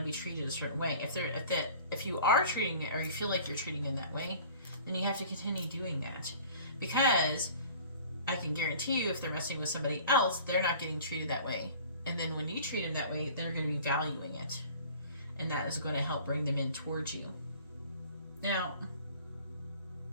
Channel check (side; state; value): both; inverted; correlation -0.46